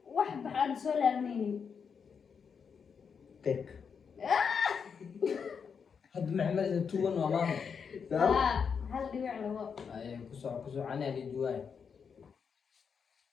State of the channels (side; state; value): right; quieter; 6.4 dB